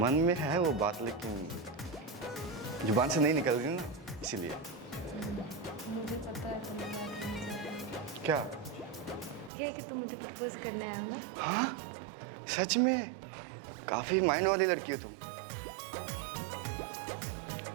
में है वो बात, लेकिन जुबान से नहीं निकल रही ना, इसीलिए। मुझे पता है तुम बात नहीं कर रहे। क्या? ये कि तुम मुझे प्रपोज करने आए हो ना। हाँ सच में? काफी माइंड वाली लड़की हो तुम।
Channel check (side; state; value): left; drops out; at 9.5 s